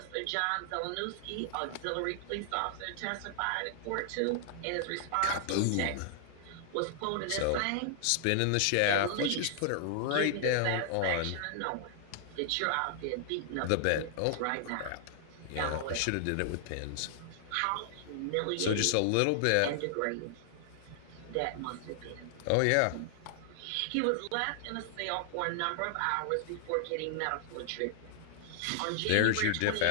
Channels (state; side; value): different; both; correlation 0.00